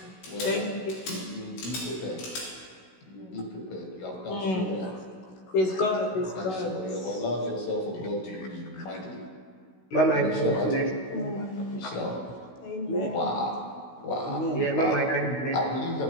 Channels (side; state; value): right; late; 16 ms